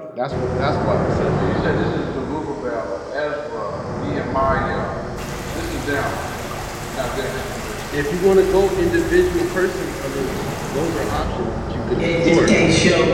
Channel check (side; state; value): both; identical; correlation 1.00